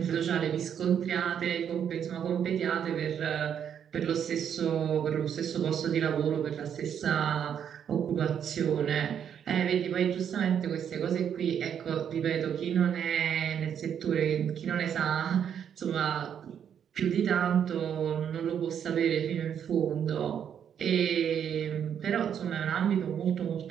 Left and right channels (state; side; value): quieter; left; 8.5 dB